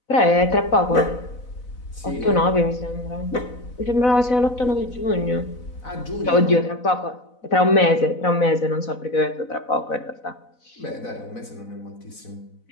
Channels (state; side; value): late; right; 4.0 ms